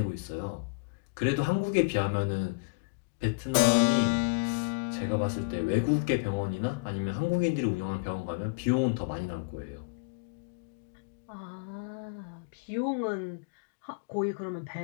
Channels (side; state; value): right; quieter; 31.6 dB